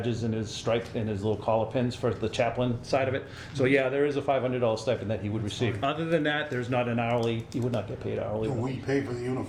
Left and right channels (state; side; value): identical; both; correlation 1.00